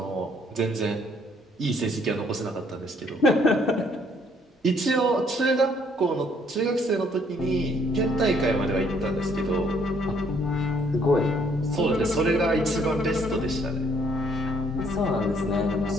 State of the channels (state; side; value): normal; both; correlation 0.65